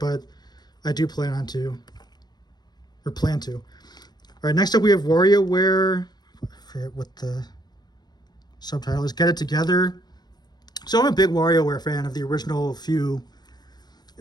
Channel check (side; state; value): right; late; 0.20 ms